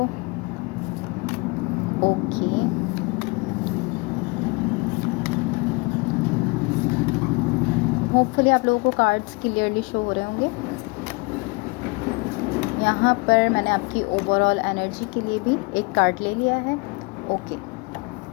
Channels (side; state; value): right; quieter; 27.5 dB